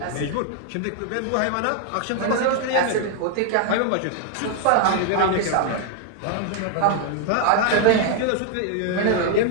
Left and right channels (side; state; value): both; different; correlation 0.00